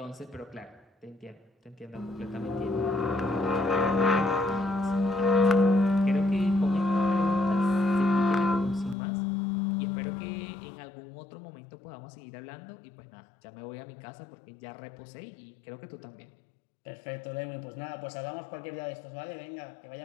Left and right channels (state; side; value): drops out; right; at 9.0 s